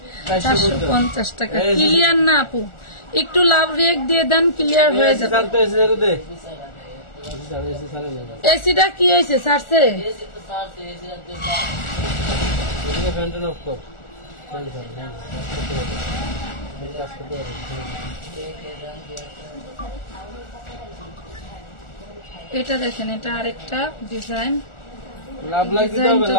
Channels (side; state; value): right; late; 1.4 ms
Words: 450 টাকা। ক্লিয়ার না আপু? একটু লাভ রিয়েক্ট দিয়ে দেন, ক্লিয়ার হয়ে যাবে। এসিটা কি হয়েছে ছাড়ছে? এটা দেখেন, এটা আরেকটা ডিজাইন,